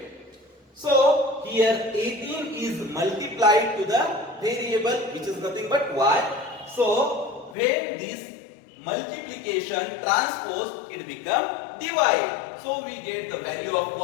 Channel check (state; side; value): drops out; right; at 7.6 s